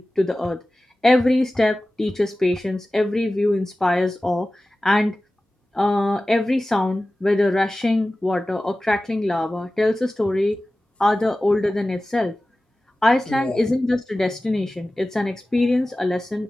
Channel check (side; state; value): both; normal; correlation 0.96